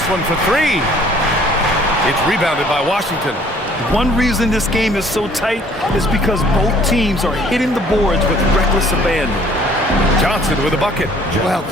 one for 3. It's rebounded by Washington. One reason this game is so tight is because both teams are hitting the boards with reckless abandon. Johnson with a bucket. Well,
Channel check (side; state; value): both; normal; correlation 0.57